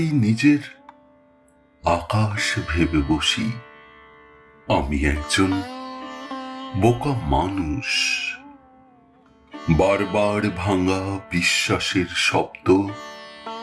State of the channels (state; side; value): identical; both; correlation 1.00